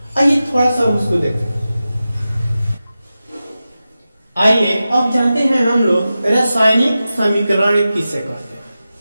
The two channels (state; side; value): inverted; both; correlation -0.93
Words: आइए थोड़ा सा उसको देखते हैं। आइए अब जानते हैं हम लोग रासायनिक समीकरण किसे कहते